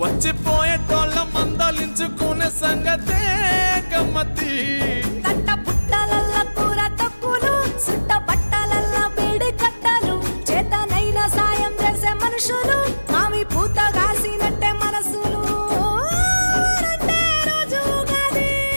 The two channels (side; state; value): both; inverted; correlation -1.00